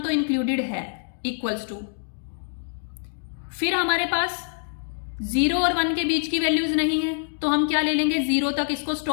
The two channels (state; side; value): silent; right; digital silence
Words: तो इंक्लूडेड है, इक्वल्स टू, फिर हमारे पास 0 और 1 के बीच की वैल्यूज नहीं है तो हम क्या ले लेंगे, 0 तक इसको